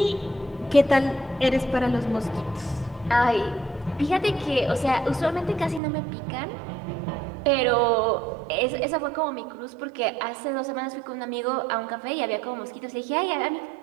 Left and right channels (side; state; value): left; drops out; at 5.8 s